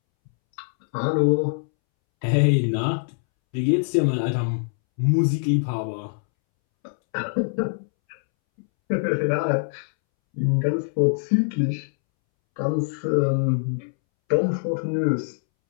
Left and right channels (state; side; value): silent; right; 63 dB below the other